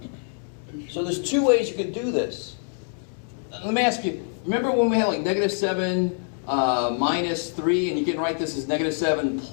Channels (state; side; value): silent; right; 56 dB below the other